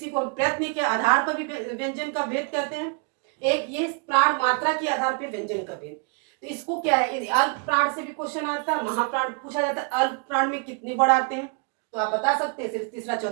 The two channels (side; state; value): left; quieter; 37.7 dB